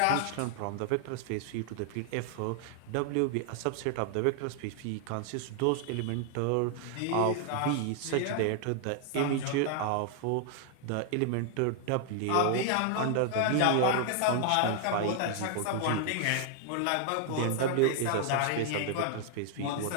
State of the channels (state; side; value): different; both; correlation 0.00